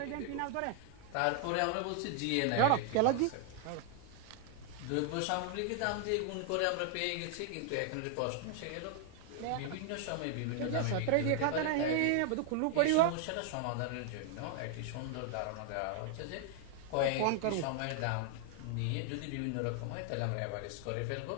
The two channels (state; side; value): different; both; correlation 0.00